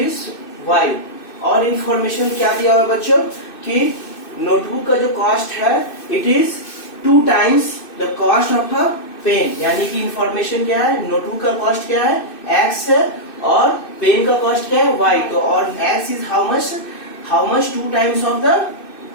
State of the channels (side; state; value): right; late; 2.6 ms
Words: y. और information क्या दिया हुआ बच्चों कि नोटबुक का जो कॉस्ट है it is 2 times the cost of a pen, यानी कि इंफॉर्मेशन क्या है, नोटबुक का कॉस्ट क्या है एक्स है और पेन का कॉस्ट क्या है वाई। तो और x is how much 2 times